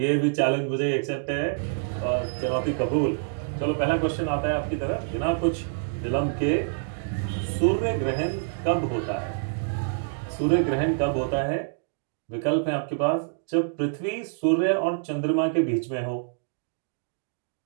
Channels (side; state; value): left; silent; digital silence